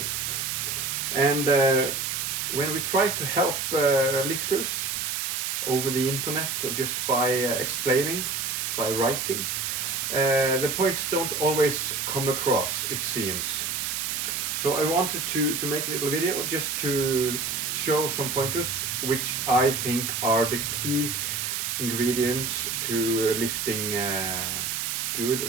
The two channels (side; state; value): right; noise; hiss, 1 dB below the sound